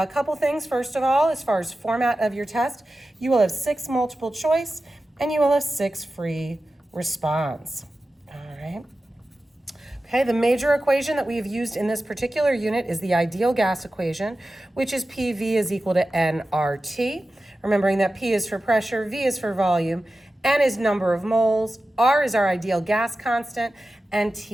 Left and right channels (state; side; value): normal; both; correlation 0.94